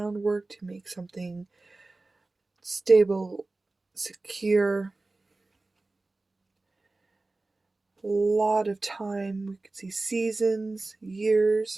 to make something stable, secure. A lot of time. We could see seasons,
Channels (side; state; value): left; quieter; 3.2 dB